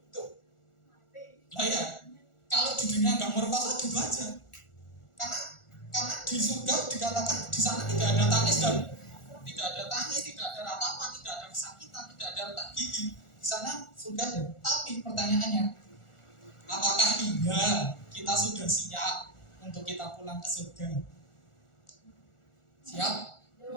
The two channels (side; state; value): right; late; 1.4 ms